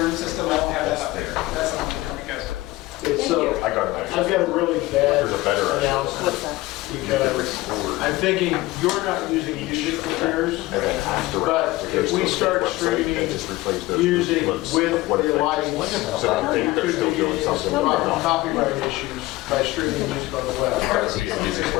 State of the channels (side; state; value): right; quieter; 19.2 dB